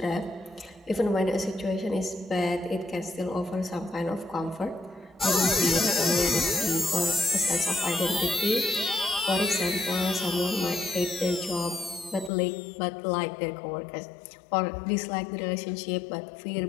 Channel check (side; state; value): right; drops out; at 12.3 s